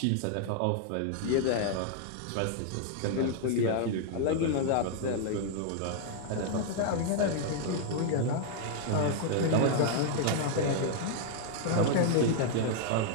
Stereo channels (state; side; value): different; both; correlation 0.00